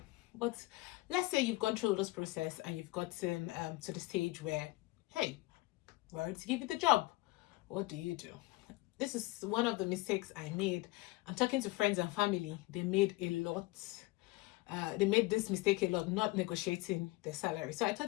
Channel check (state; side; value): quieter; right; 20.8 dB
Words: But let's say you've gone through this process and you've gotten to the stage where, hey, we're ready to give you the job. What do you do? This is one of the mistakes I made. I'm talking to friends and family. They made this mistake a lot, not negotiating their salary. So I thought